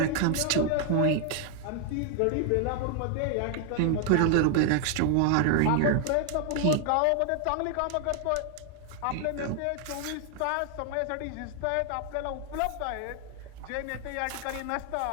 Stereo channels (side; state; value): both; different; correlation 0.00